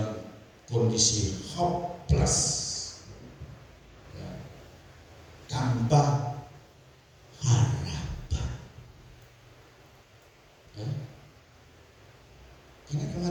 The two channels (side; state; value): both; identical; correlation 1.00